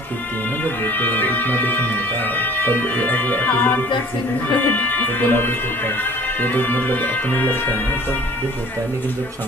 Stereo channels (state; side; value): normal; both; correlation 0.50